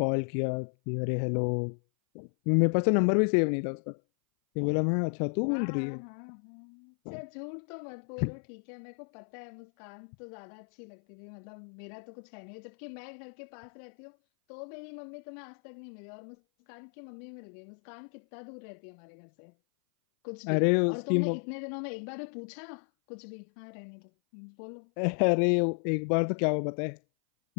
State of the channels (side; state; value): right; silent; 56 dB below the other